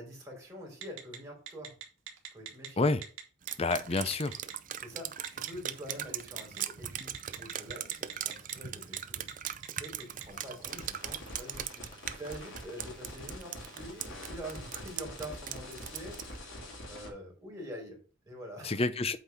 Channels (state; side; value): normal; both; correlation 0.33